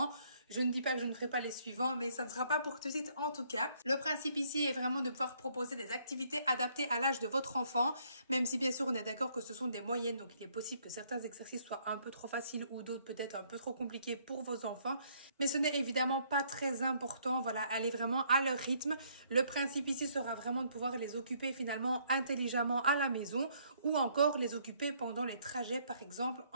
Je ne dis pas que je ne ferai pas les suivants, mais ça ne sera pas pour tout de suite en tout cas. Le principe ici est vraiment de pouvoir proposer des activités adaptées à l'âge de votre enfant, même si bien sûr on est d'accord que ce sont des moyennes, donc il est possible que certains exercices soient un peu trop faciles ou d'autres peut-être un peu trop compliqués pour vos enfants. Mais ce n'est évidemment pas très important, voilà, allez vraiment à leur rythme. Le principe ici sera vraiment de pouvoir les occuper finalement intelligemment à la maison ou encore les occuper pendant les trajets par exemple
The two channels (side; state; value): both; inverted; correlation -0.67